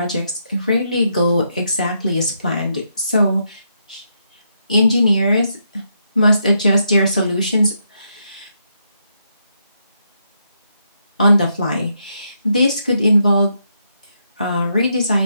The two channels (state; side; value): inverted; both; correlation -0.79